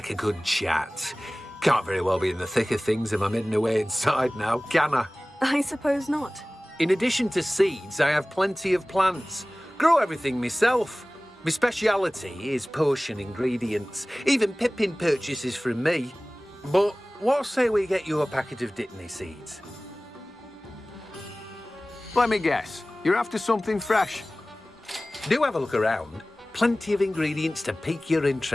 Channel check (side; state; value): both; normal; correlation 0.98